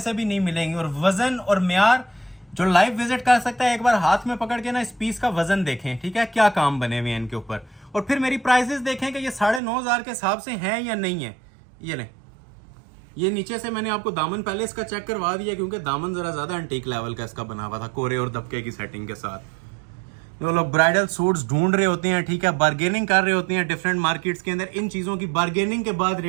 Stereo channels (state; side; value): drops out; left; at 9.6 s